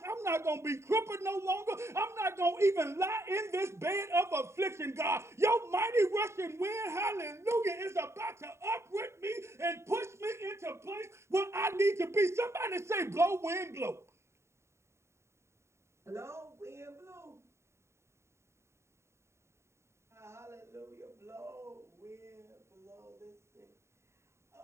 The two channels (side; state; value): left; late; 0.13 ms